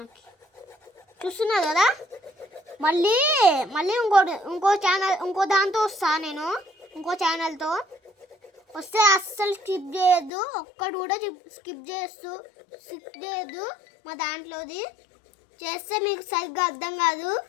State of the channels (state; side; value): drops out; right; at 10.3 s